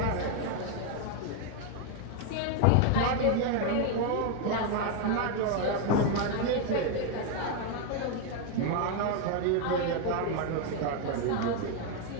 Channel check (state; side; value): different; both; correlation 0.01